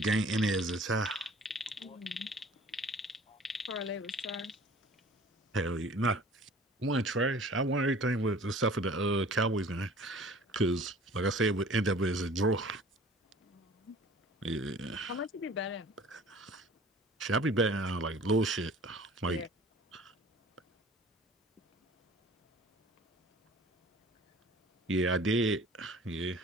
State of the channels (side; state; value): both; normal; correlation 0.48